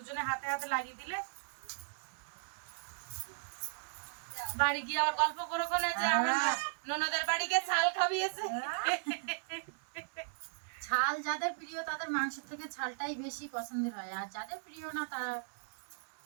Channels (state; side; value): silent; left; 53 dB below the other